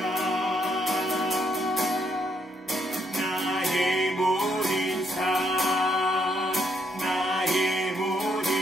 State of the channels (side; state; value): both; normal; correlation 0.74